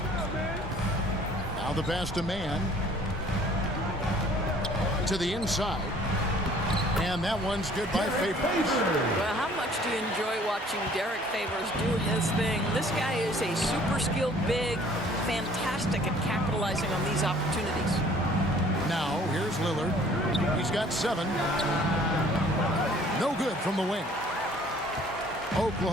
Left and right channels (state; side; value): normal; both; correlation 0.55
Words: Now the pass to man. To the inside. And that one's good by Favors. Well, how much do you enjoy watching Derek Favors do his thing? This guy is a super skilled big, fantastic at capitalizing on these opportunities. Now, here's Lillard. He's got 7. No good from the wing.